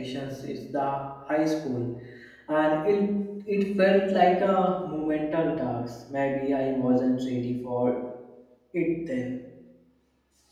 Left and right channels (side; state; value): both; identical; correlation 1.00